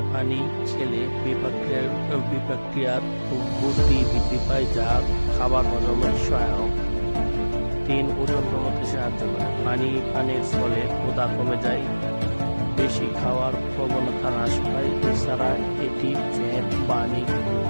পানি খেলে বিপাকক্রিয়ার গতি বৃদ্ধি পায়, যা খাবার হজমের সহায়ক। 3. ওজন কমাতে সাহায্য করে। পানি পানের ফলে ক্ষুধা কমে যায়, বেশি খাওয়ার প্রবণতা হ্রাস পায়। এছাড়া এটি ফ্যাট বার্নিং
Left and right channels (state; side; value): inverted; both; correlation -1.00